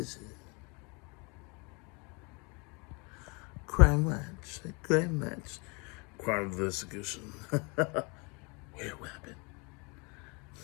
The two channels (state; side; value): quieter; right; 30.5 dB